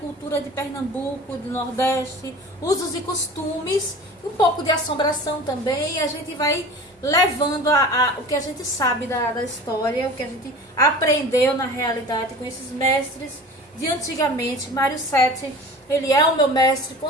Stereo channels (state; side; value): normal; both; correlation 0.38